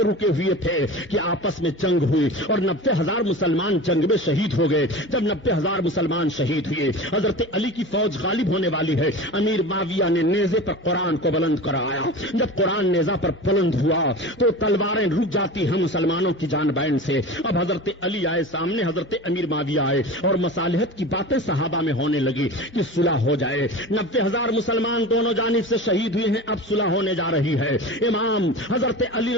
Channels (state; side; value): normal; both; correlation 0.32